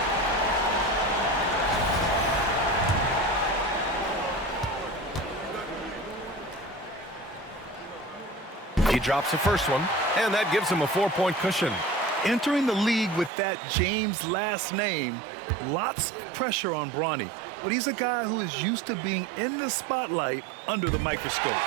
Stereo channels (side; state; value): left; drops out; at 13.3 s